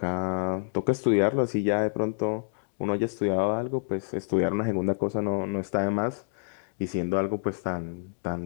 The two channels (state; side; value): silent; right; digital silence